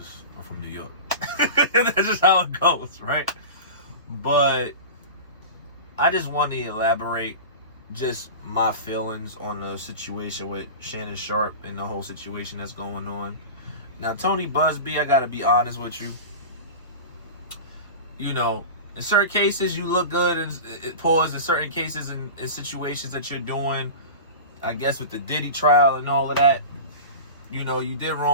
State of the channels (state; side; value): inverted; both; correlation -0.30